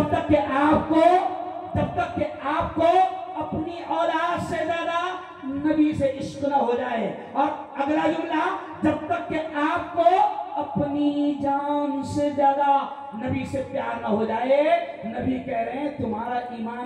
तक कि आपको अपनी औलाद से ज्यादा नबी से इश्क न हो जाए। और अगला जुमला, जब तक कि आपको अपनी जान से ज्यादा नबी से प्यार न हो जाए, नबी कह रहे हैं तुम्हारा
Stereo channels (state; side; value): identical; both; correlation 1.00